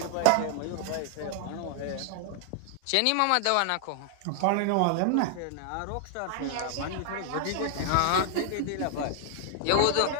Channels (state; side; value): different; both; correlation 0.00